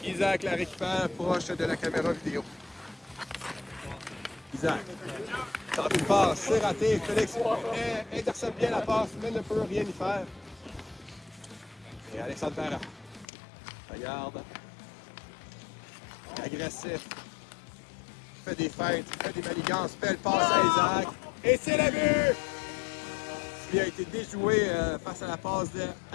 Isaac la récupère proche de la caméra vidéo. Isaac tente une passe, c'est raté. Félix intercepte bien la passe, mais ne peut rien y faire. Et Alexandre Para. Regarde. Agressif. Fait des feintes, fait des manigances, belle passe à Isaac. Et c'est le but! Il a été déjoué face à la passe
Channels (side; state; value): right; drops out; at 13.2 s